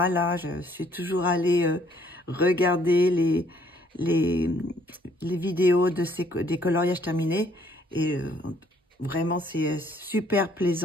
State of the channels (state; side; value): normal; both; correlation 0.64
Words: là, je suis toujours allée regarder les vidéos des coloriages terminés et vraiment c'est super